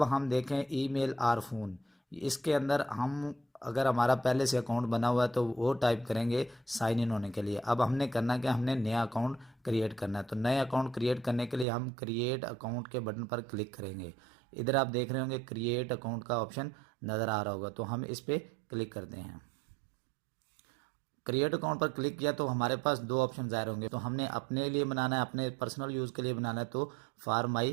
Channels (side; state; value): left; drops out; at 11.7 s